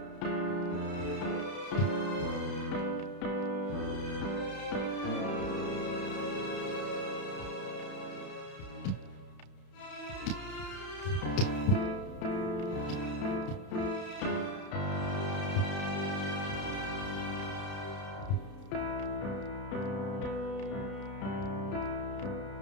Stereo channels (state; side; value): late; right; 32 ms